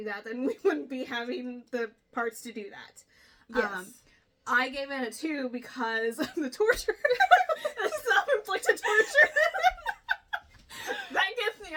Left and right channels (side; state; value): both; identical; correlation 1.00